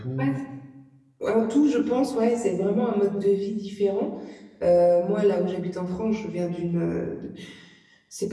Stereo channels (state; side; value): identical; both; correlation 1.00